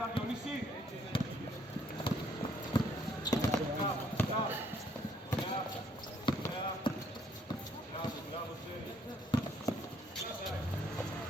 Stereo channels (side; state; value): both; normal; correlation 0.66